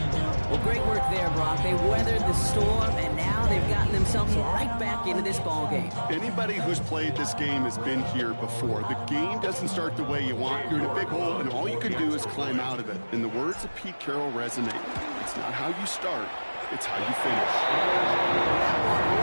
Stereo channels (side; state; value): both; inverted; correlation -1.00